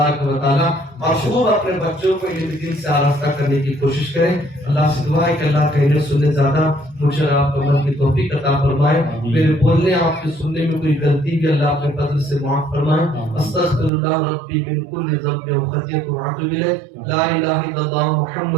و تعالیٰ، اور خوب اپنے بچوں کو علم دین سے آراستہ کرنے کی کوشش کریں۔ اللہ سے دعا ہے کہ اللہ کہنے سننے زیادہ مجھے آپ کو عمل کی توفیق عطا فرمائے، میرے بولنے آپ کے سننے میں کوئی غلطی بھی اللہ اپنے فضل سے معاف فرمائے۔ استغفر اللہ ربی من کل ذنب و خطیئۃ واتوب الیہ، لا الہ الا اللہ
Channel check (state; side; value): drops out; left; at 13.9 s